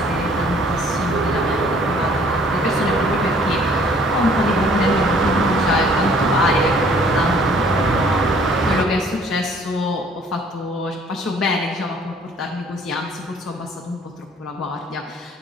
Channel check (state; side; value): normal; both; correlation 0.57